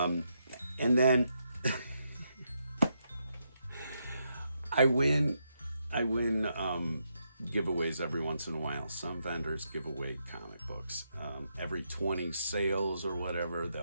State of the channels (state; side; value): inverted; both; correlation -0.81